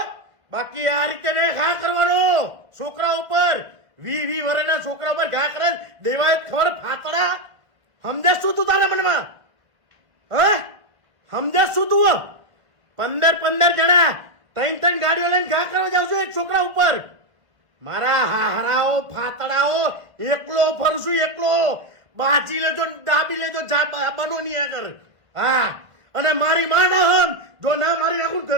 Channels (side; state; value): left; late; 1.5 ms